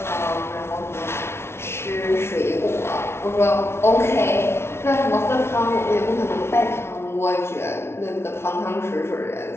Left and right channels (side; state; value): right; late; 0.12 ms